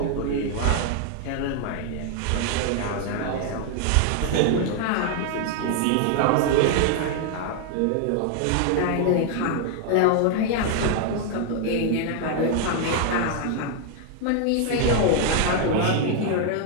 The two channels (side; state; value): both; different; correlation 0.00